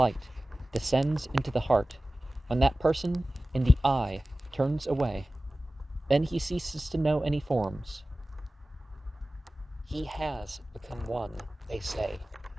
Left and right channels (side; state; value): both; normal; correlation 0.96